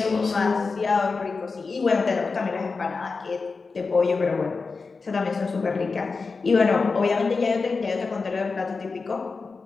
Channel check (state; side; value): quieter; right; 4.4 dB